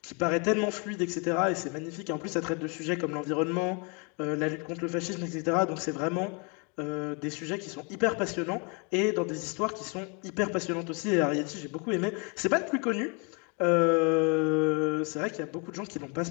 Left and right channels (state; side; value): quieter; right; 33.9 dB